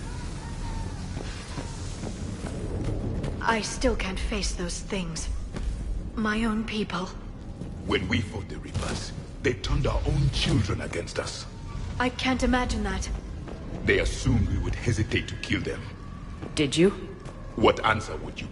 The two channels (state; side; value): identical; both; correlation 1.00